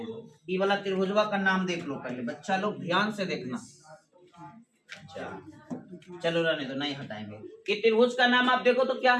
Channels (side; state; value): both; identical; correlation 1.00